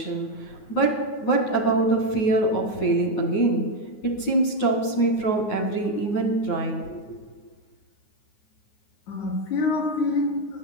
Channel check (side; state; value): right; late; 9.5 ms